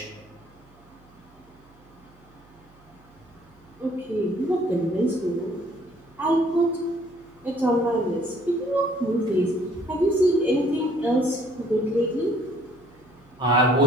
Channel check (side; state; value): right; noise; hum, 28 dB below the sound